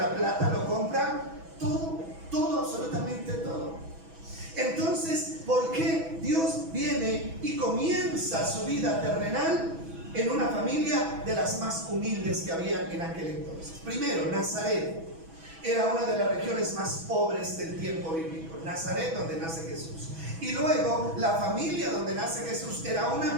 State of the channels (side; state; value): left; late; 6.1 ms